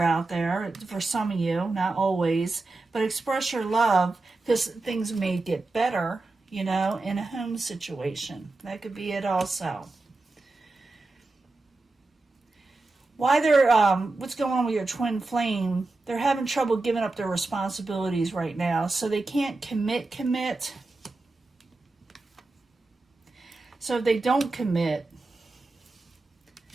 there for some of you, not always. But express your love because things may get better, you know, in a home situation. That could be it also. Why what's going on with your twin flame? They're having trouble giving up their responsibilities right now. So they can't commit. So if they don't commit,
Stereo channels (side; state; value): left; quieter; 3.3 dB